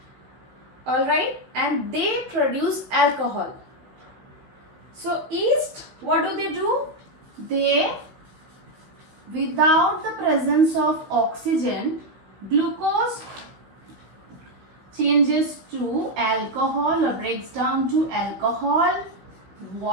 Alright, and they produce alcohol. So yeast, what do? They, without the presence of oxygen, glucose changes to alcohol or breaks down to alcohol,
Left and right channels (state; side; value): late; left; 16 ms